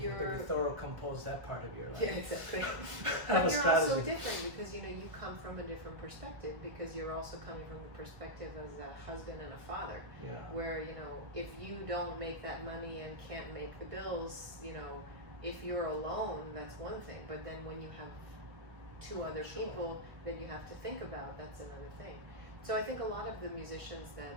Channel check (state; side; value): late; left; 1.7 ms